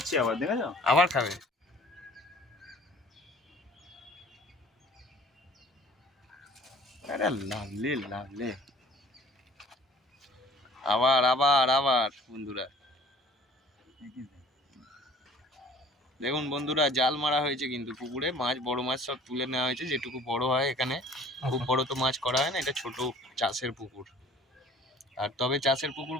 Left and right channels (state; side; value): normal; both; correlation 0.50